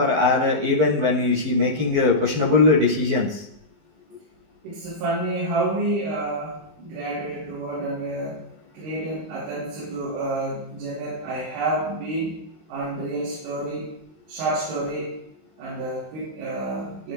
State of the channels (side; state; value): left; late; 19 ms